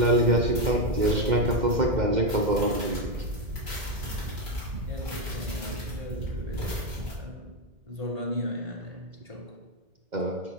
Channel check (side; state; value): left; late; 2.1 ms